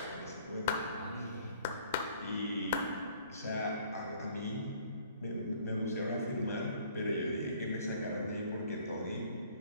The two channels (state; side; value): inverted; both; correlation -0.57